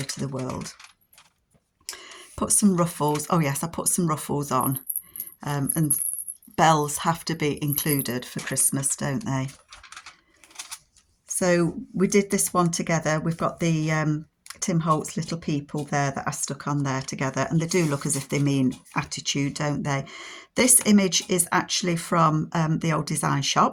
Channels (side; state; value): both; identical; correlation 1.00